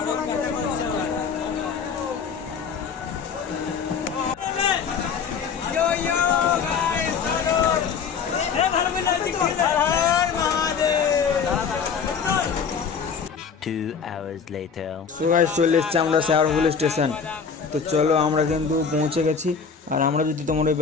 সো গাইস, চলে এসেছি আমরা শেওড়াফুলি স্টেশন। তো চলো, আমরা কিন্তু পৌঁছে গেছি। আর আমরা যদি তোমার ওই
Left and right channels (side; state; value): right; quieter; 6.2 dB